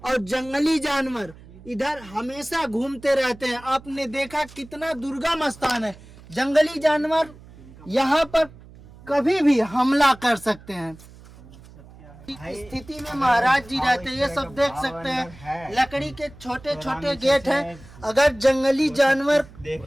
और जंगली जानवर इधर हमेशा घूमते रहते हैं। आपने देखा कितना दुर्गम स्थान है, जंगली जानवर यहाँ पर कभी भी हमला कर सकते हैं। इस स्थिति में महाराज जी रहते हैं। ये सब देख सकते हैं, लकड़ी के छोटे छोटे गेट हैं। अगर जंगली जानवर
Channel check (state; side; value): noise; right; hum, 21 dB below the sound